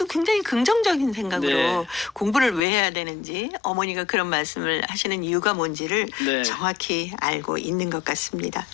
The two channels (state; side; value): drops out; right; at 2.7 s